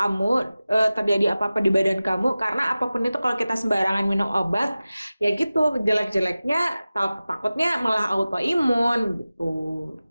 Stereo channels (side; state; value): both; inverted; correlation -0.96